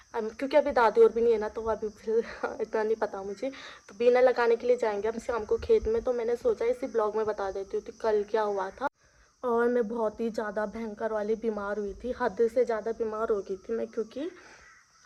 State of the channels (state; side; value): identical; both; correlation 1.00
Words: क्योंकि अभी दादी और भी नहीं है ना, तो अभी फिर इतना नहीं पता मुझे। तो बीना लगाने के लिए जाएंगे हम शाम को खेत में, तो मैंने सोचा इसी ब्लॉग में बता देती हूँ कि कल क्या हुआ था। और मैं बहुत ही ज़्यादा भयंकर वाली बीमार हुई थी, हद से ज़्यादा बीमार हो गई थी मैं, क्योंकि